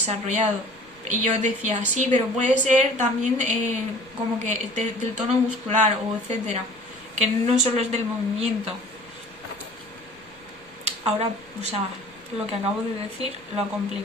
Y yo decía, sí, pero puede ser también como que del tono muscular o etcétera, que no solo es del movimiento. Ahora, o sea, lo que acabo de decir lo ha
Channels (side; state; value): left; noise; rumble, 29 dB below the sound